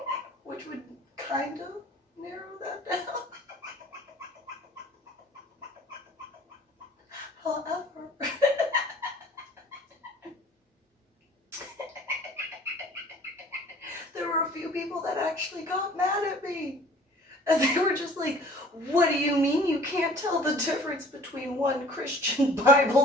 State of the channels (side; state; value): both; normal; correlation 0.50